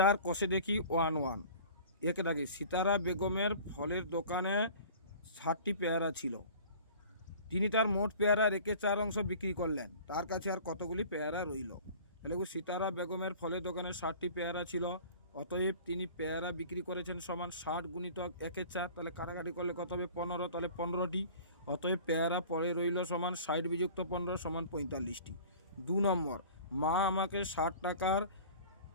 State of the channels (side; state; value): both; inverted; correlation -0.43